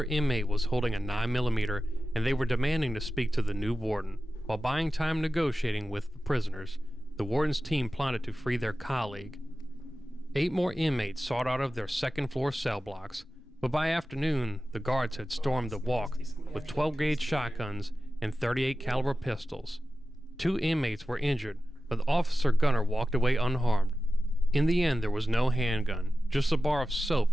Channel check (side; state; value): both; normal; correlation 0.94